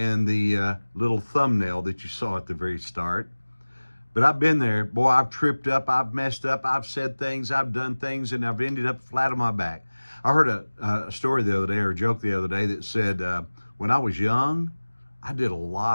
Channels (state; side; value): inverted; both; correlation -1.00